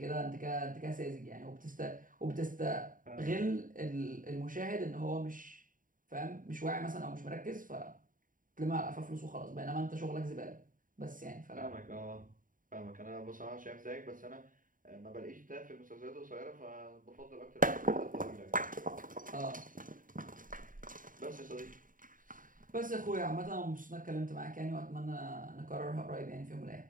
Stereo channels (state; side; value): late; left; 0.39 ms